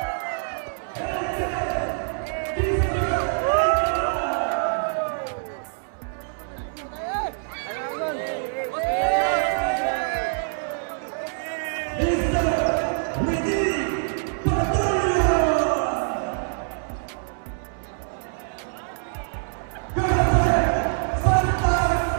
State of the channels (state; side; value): silent; left; 62 dB below the other